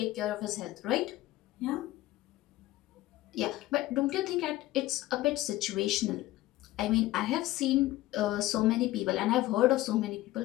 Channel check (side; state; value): right; quieter; 16.6 dB